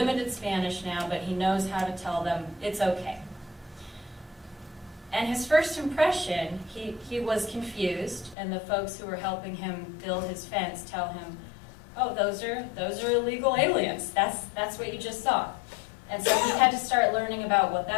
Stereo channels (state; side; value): drops out; right; at 8.3 s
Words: Spanish now, but he knows how to tell them it's okay. And his first impression, he was confused, and the folks who were helping him build his fence tell him, "Oh, those are illegal aliens. That's what you just saw." And so he had to start learning about what